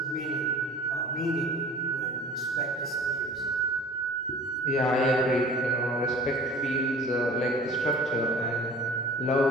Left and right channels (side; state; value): both; normal; correlation 0.44